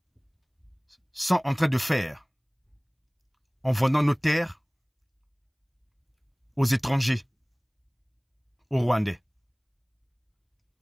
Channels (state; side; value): identical; both; correlation 1.00